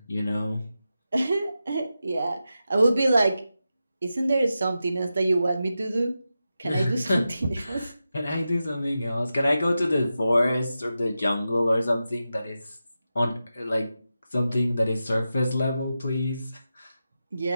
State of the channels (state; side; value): inverted; both; correlation -0.91